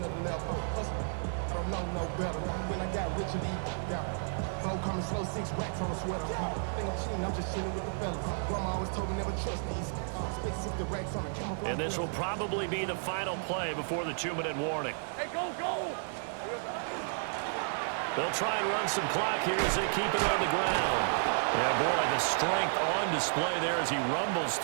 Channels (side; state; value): left; silent; digital silence